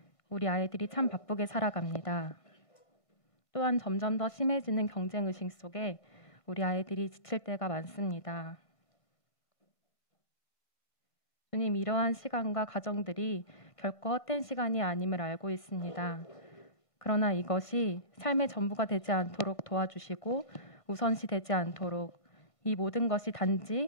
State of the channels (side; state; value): right; late; 1.6 ms